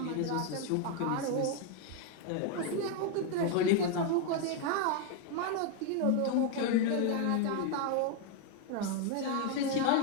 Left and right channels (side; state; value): both; different; correlation 0.01